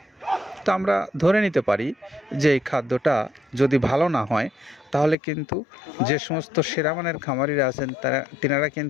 তো আমরা ধরে নিতে পারি যে এই খাদ্যটা যদি ভালো না হয় তাহলে কিন্তু যে সমস্ত সেরামানের খামারিরা আছেন তিনারা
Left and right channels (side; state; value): right; drops out; at 5.2 s